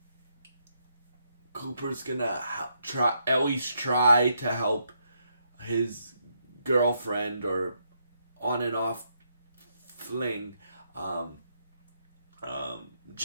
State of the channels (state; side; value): inverted; both; correlation -0.77